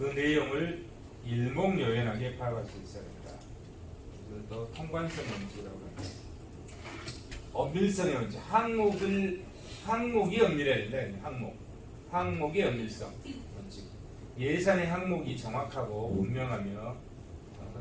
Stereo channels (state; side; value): identical; both; correlation 1.00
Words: 내용을 일목요연하게 파악할 수 있어야 된다. 그래서 또 통관성 원칙이라고 합니다. 엄밀성의 원칙, 항목이 엄밀해야 된다. 항목의 엄밀성 원칙. 예산의 항목이 정확하고 분명하며